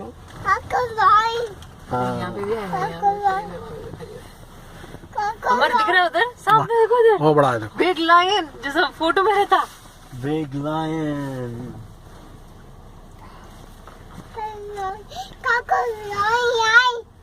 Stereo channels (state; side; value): identical; both; correlation 1.00